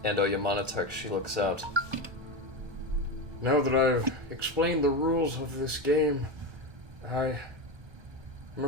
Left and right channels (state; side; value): late; left; 1.2 ms